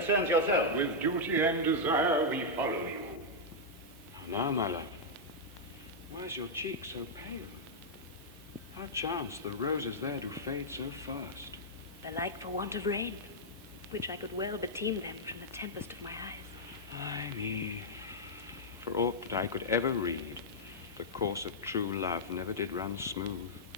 yourself. With duty and desire we follow you. Now, my love, why is your cheek so pale? How chance the roses there do fade so fast? Belike for want of rain, which I could well beteem them from the tempest of my eyes. Ay me, for aught that I could ever read, the course of true love never did run smooth.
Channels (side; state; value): both; normal; correlation -0.07